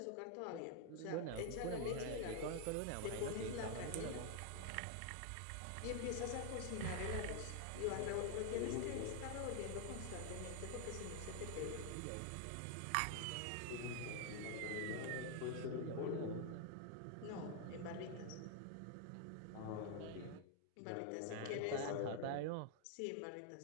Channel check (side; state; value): both; different; correlation 0.00